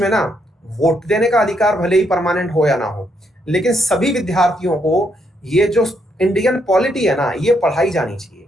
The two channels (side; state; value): both; normal; correlation 0.75